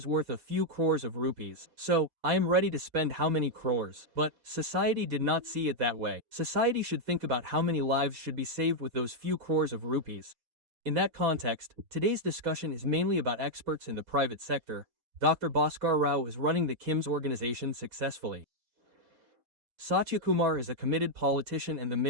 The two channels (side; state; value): left; late; 6.3 ms